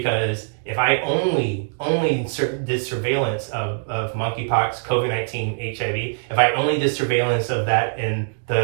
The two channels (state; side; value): silent; left; digital silence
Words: if I only did surveillance of monkeypox, COVID-19, HIV, if I only did surveillance of that in